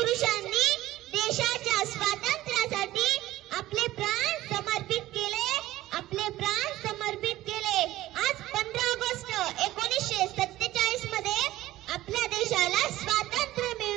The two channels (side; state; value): left; quieter; 15.8 dB